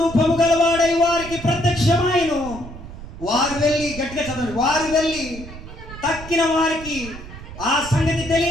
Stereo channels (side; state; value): right; noise; rumble, 13 dB below the sound